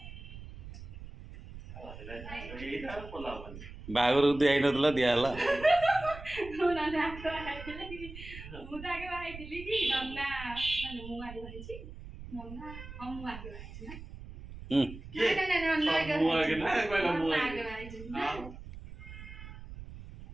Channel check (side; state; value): right; noise; rumble, 13 dB below the sound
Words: ଏଇଟା ଆଉ କଲା ହବନି। ବାହାଘରକୁ ଦିଆହେଇନଥିଲା ଦିଆହେଲା। ମୁଁ ତ ଆଗେ ବାହାହେଇଥିଲି କି ନନା ମାନେ ମୁଁ ଆଗେ ବାହାହେଇଛି ନନା ମୁଁ ଆଗେ ବାହାହେଇଛି ନା କିଏ? ନନା ଆଗେ ମୁଁ ଆଗେ ନା କହିଲା ମୁଁ ନନା ଆଗେ। ଆଗେ ବାହାହେଇଛି ଆଉ